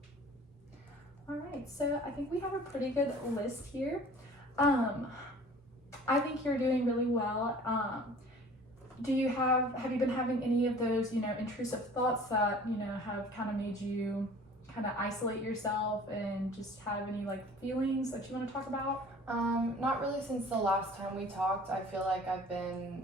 All right, so I think we have a pretty good list here. I think you're doing really well. Have you been having any of those, intrusive thoughts that, have kind of made you kind of isolate yourself and just have any like feelings that you want to talk about? Not really since the last time we talked. I feel like I've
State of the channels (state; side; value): normal; both; correlation 0.47